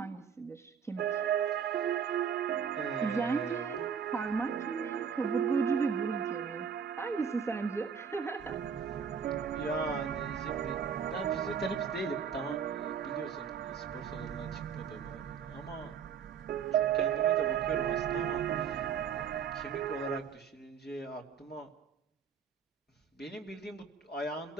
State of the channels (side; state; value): left; quieter; 7.1 dB